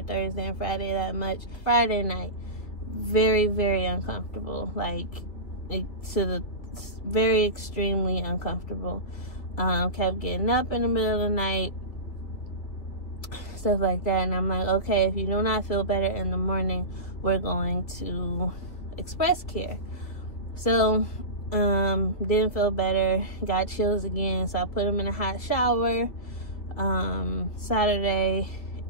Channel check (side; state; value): right; late; 3.2 ms